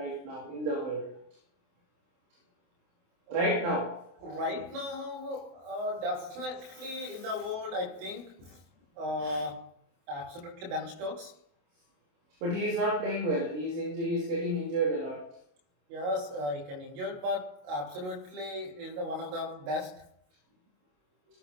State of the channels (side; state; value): left; late; 27 ms